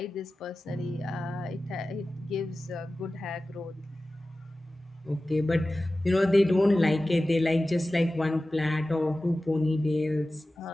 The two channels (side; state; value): both; normal; correlation 0.95